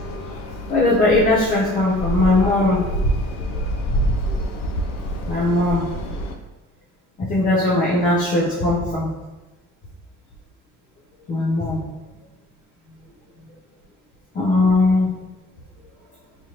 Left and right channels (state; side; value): normal; both; correlation 0.51